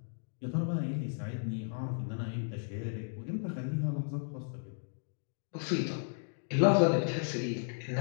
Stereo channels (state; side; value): silent; right; digital silence